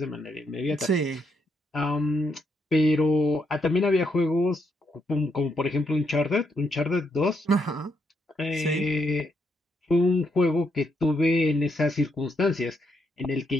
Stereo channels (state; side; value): normal; both; correlation 0.78